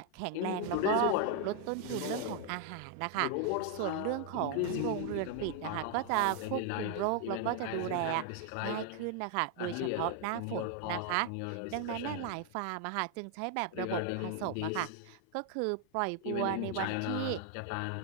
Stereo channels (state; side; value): different; both; correlation 0.00